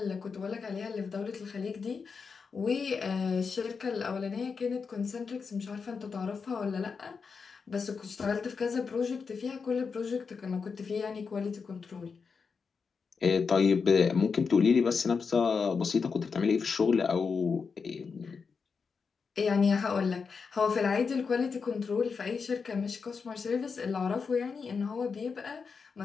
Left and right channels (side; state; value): right; quieter; 5.4 dB